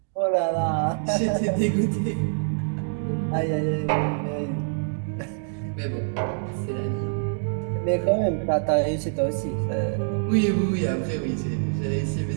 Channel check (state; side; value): silent; left; digital silence